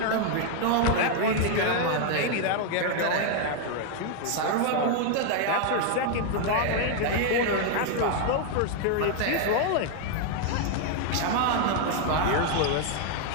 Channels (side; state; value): both; different; correlation 0.00